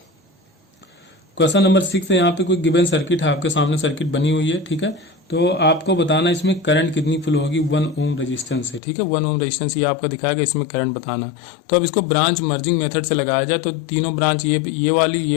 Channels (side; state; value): right; drops out; at 8.8 s